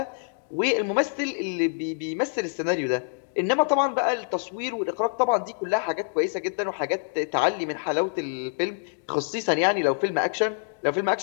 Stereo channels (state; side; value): silent; right; digital silence